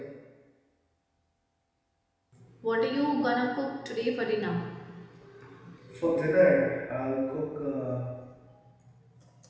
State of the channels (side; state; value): both; identical; correlation 1.00